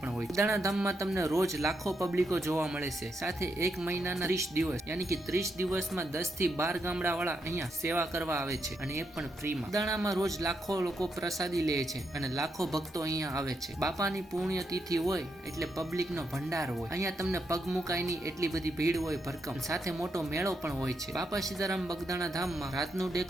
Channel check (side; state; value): both; normal; correlation 0.81